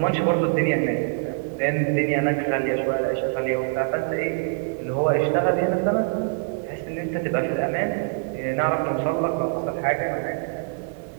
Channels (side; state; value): left; silent; 57 dB below the other